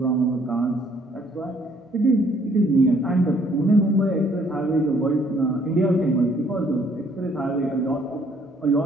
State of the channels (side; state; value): both; normal; correlation 0.63